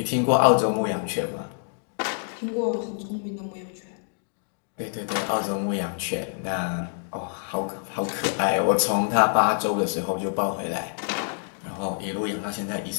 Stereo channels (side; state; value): right; silent; 61 dB below the other